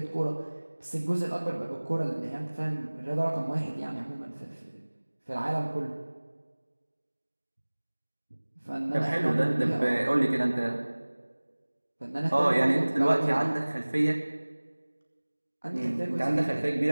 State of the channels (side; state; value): both; inverted; correlation -1.00